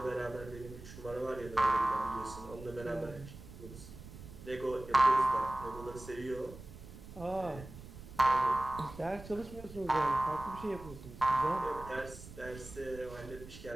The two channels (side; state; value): right; noise; rumble, 15 dB below the sound